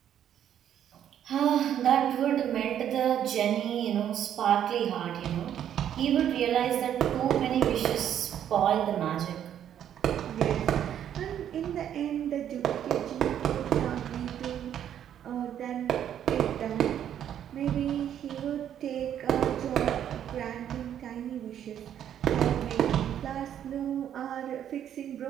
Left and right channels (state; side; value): quieter; left; 10.0 dB